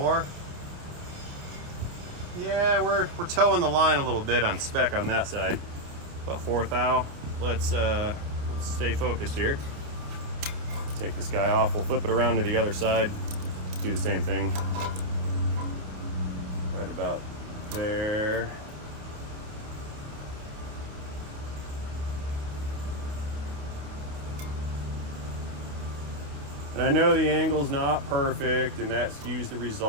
Yeah, we're towing the line a little bit on spec on that side. About 4 thou. Let's stay focused here. Take this guy off. We'll flip it around to the other side. Do the same thing. Right about there. And I know the angle's not perfect and that skews the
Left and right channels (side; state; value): left; late; 28 ms